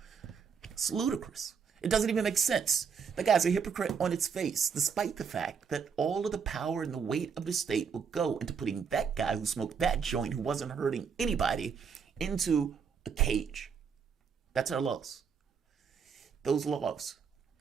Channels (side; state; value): left; quieter; 6.4 dB